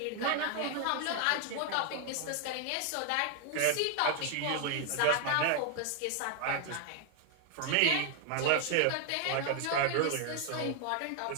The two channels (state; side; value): different; both; correlation 0.00